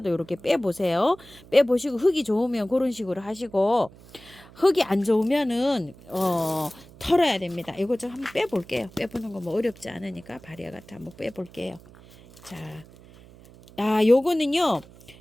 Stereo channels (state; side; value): noise; right; hum, 22 dB below the sound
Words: 이렇게 빼보세요. 빼보시고 흙이 좋으면 그런 식으로 하시고 흙이 안 좋으면은 털어야 됩니다. 이거 좀 한번 빼볼게요. 빼보는 거 뭐 어렵지 않으니까 바리에가타 한번 빼볼게요. 자, 요거는요.